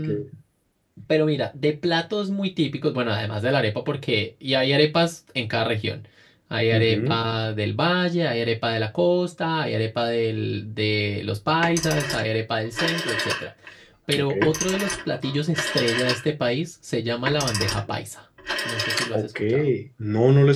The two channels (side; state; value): both; identical; correlation 1.00